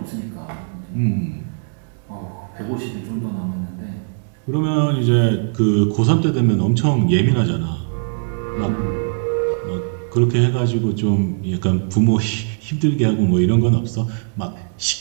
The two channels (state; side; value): silent; left; digital silence